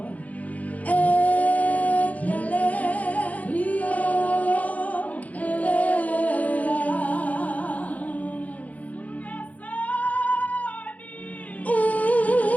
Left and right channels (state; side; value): late; right; 0.072 ms